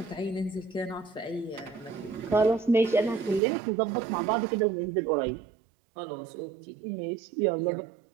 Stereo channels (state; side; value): drops out; left; at 3.4 s